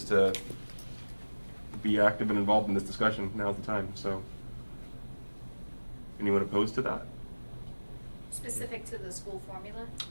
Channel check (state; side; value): inverted; both; correlation -1.00